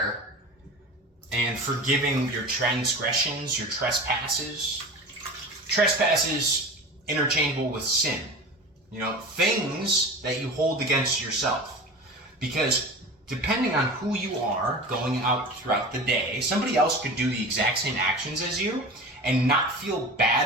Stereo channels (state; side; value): normal; both; correlation 0.33